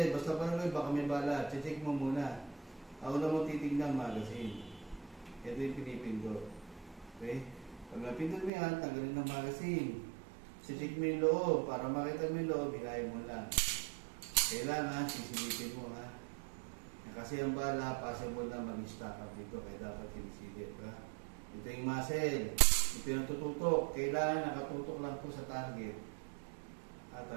Basta parang baka may bala. Check mo muna. Ako na mo titignan magazine. Ito yung pinipindot. Okay? Pag napindot mo yan, tanggalin ng magazine. Check mo yung loob. Para makita mo yung loob, hilahin mo lang. Kailangan, sisilipin mo ha. Kasi ang bala, possible na mag-stack up dito. Kaya dapat sinisilip ha. Ito yung muzzle. Ito yung tututok. Kailangan nakatutok lang po sa target.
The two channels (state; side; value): drops out; left; at 8.5 s